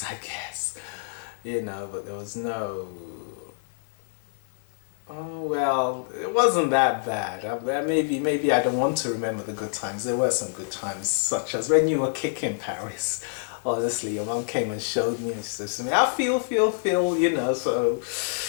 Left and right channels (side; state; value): right; silent; digital silence